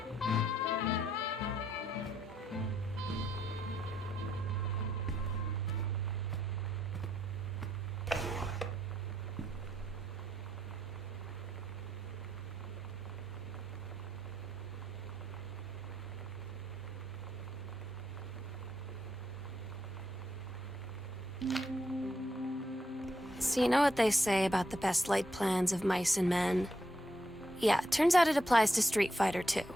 So you know what they say about the best laid plans of mice and men? Yeah, it turns out it applies to Street Fighter too.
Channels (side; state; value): both; normal; correlation 0.78